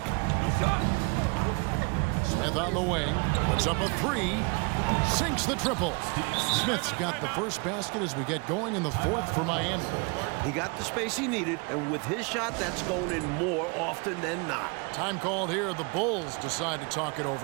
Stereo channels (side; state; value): left; quieter; 31.5 dB